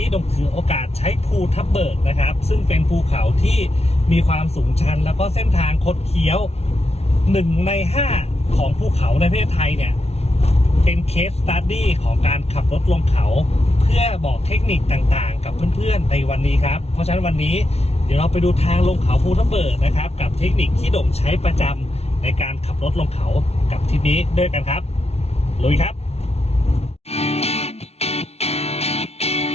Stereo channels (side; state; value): right; late; 0.31 ms